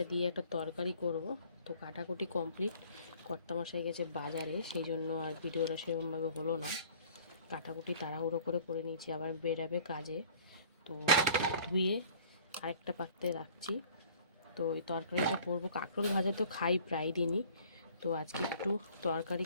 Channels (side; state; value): both; inverted; correlation -0.52